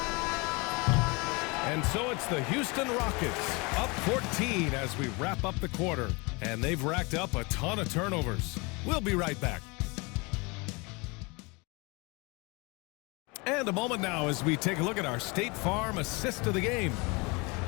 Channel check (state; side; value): quieter; right; 27.7 dB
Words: And so it's the Houston Rockets up 14 as we wrap up the quarter. And they've racked up a ton of turnovers. We'll be right back. And a moment now as we take a look at our State Farm assist of the game.